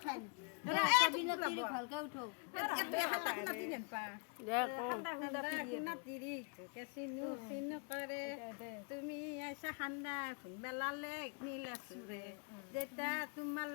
খাই এৰা, এটা এইটো দিনত ল'ব। তিৰি ভালকে উঠক এইটো হাল্লা খুন্দা তিৰি আনপা দে কওঁ হাল্লা খুন্দা তিৰি তোকে চিনু চিনু কৰে তুমি আইছা খান্দা খুন্দা লালেক নীলা চুৰে দেতা তোমাৰ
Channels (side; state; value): right; quieter; 39.0 dB